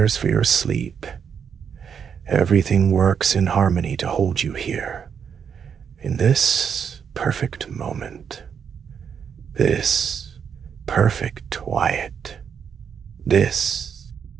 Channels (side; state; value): left; quieter; 7.3 dB